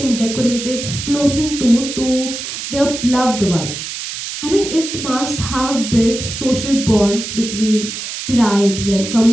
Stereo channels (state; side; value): noise; right; hiss, 7 dB below the sound